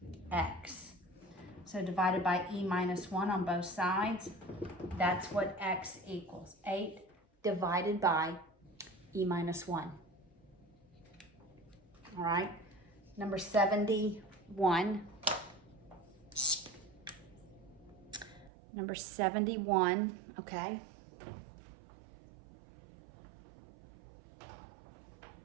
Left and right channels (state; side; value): drops out; left; at 18.5 s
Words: x. So divided by e minus 1 on both sides, that's what x equals. 8 divided by e minus 1. All right, number 71. Number 71, okay.